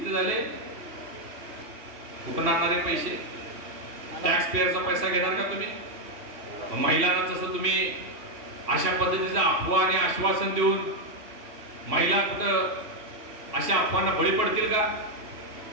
झाले? कुठून आणणारे पैसे? टॅक्स पेअरचा पैसा घेणार का तुम्ही? महिलांना जसं तुम्ही अशा पद्धतीचं अफवा आणि आश्वासन देऊन महिला कुठं अशा अफवांना बळी पडतील का?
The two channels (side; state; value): left; late; 2.8 ms